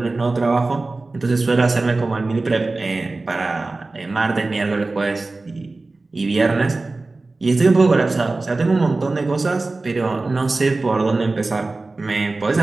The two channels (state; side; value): quieter; left; 3.4 dB